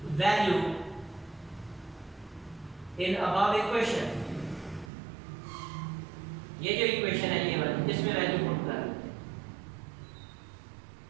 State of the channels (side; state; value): left; drops out; at 4.9 s